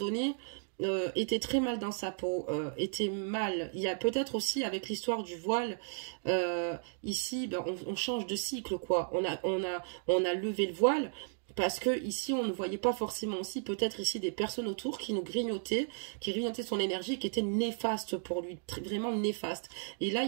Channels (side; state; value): left; silent; digital silence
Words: était très mal dans sa peau, était mal. Il y a peut-être aussi, avec l'histoire du voile, ici, ben, on change de cycle, quoi. On a levé le voile, parce que ici on ne voyait pas forcément aussi peut-être ici des personnes autour qui nous grignotaient, qui grignotaient son énergie, qui était néfaste pour lui, vraiment néfaste. Et là